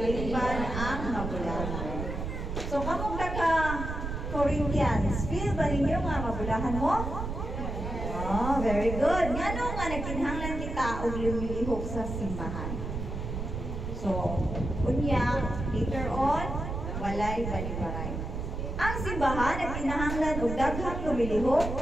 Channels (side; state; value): right; noise; rumble, 5 dB below the sound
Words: ang mabulahan. So, kamong taga Corinthians, feel ba ninyo nga mabulahan mo? Oh, very good. Nga nga nagkinhanglan kita og lumilihok sa simbahan. So, unya, later on, walay balibaray. Ang simbahan ay kinahanglan og daghang